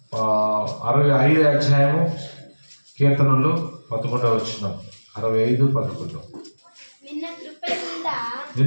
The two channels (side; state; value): both; inverted; correlation -1.00